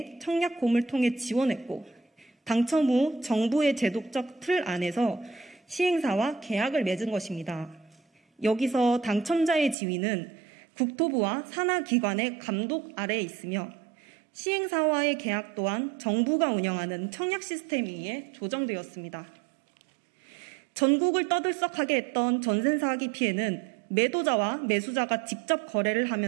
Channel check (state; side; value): drops out; left; at 9.8 s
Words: 청약홈을 통해 지원했고 당첨 후 정부의 제도적 틀 안에서 시행사와 계약을 맺은 것입니다. 여기서 당첨자의 지위는 국토부와 산하기관의 감독 아래에 있으며 시행사와의 계약 또한 정부가 운영하는 청약 시스템에 의해 조정되었습니다. 전국을 떠들썩하게 했던 전세 사기 피해는 매도자와 매수자가 직접 거래를